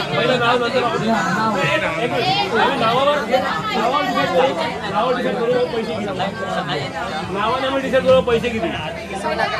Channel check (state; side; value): identical; both; correlation 1.00